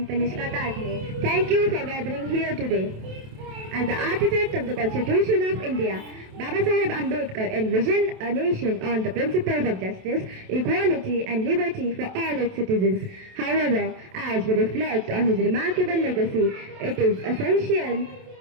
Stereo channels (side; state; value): left; late; 27 ms